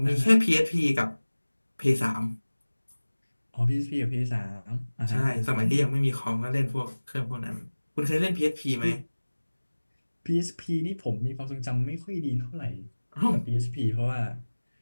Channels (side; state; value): both; inverted; correlation -1.00